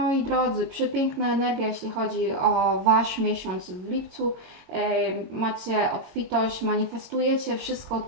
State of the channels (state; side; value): late; left; 22 ms